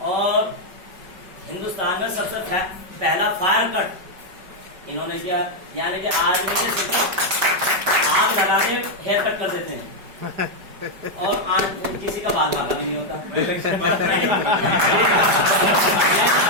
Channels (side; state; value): left; late; 5.2 ms